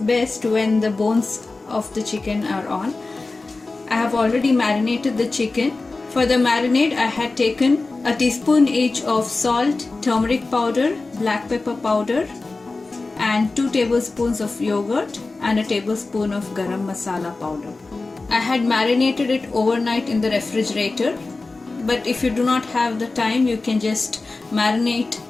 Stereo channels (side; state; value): right; quieter; 3.5 dB